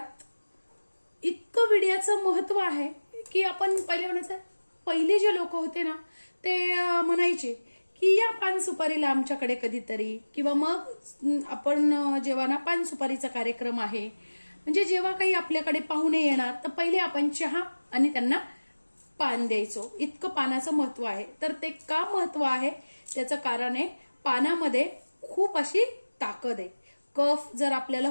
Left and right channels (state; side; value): inverted; both; correlation -1.00